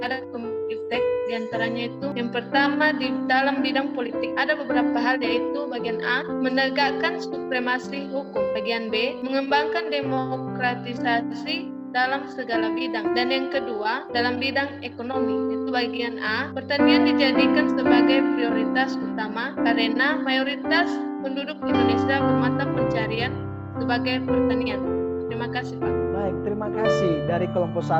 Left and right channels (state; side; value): identical; both; correlation 1.00